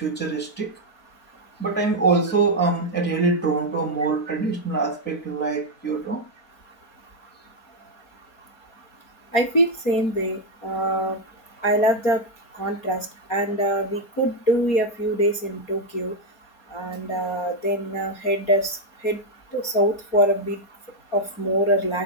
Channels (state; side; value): late; right; 4.2 ms